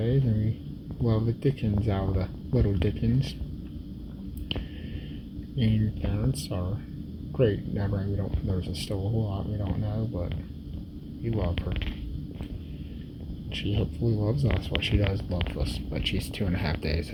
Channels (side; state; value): both; identical; correlation 1.00